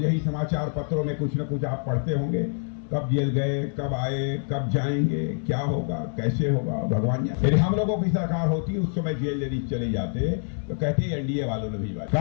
ही समाचार पत्रों में कुछ न कुछ आप पढ़ते होंगे, कब जेल गए, कब आए, कब जाएंगे, क्या होगा, कैसे होगा, भगवान जाने। यदि हम लोगों की सरकार होती उस समय जेल यदि चले जाते तो कहते एनडीए वालों ने भी,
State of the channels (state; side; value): silent; right; 61 dB below the other